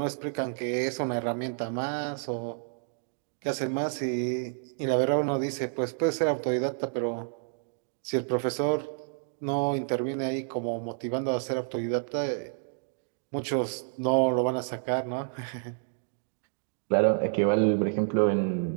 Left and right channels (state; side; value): silent; left; digital silence